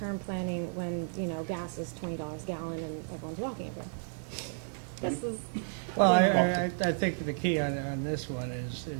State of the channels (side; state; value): left; silent; 56 dB below the other